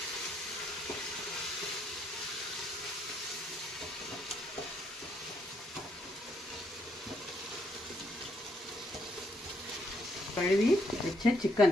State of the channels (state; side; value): normal; both; correlation 0.74